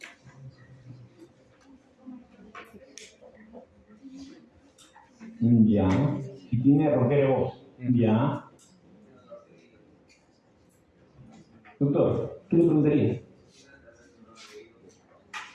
Ya. Si tiene rompera de voz. Ya. Doctor, ¿qué le preguntaría?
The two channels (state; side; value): identical; both; correlation 1.00